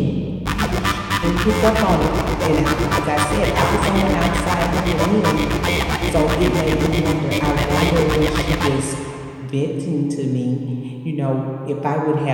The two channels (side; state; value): both; identical; correlation 1.00